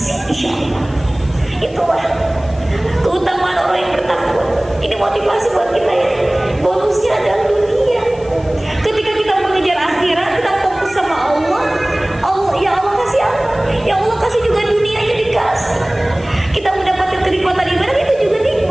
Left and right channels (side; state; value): left; noise; hiss, 25 dB below the sound